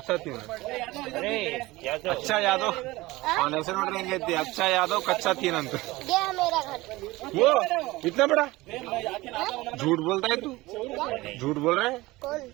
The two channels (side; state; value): left; quieter; 20.0 dB